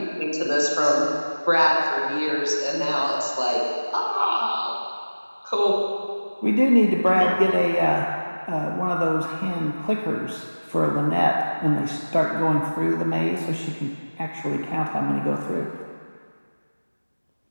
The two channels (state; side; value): inverted; both; correlation -1.00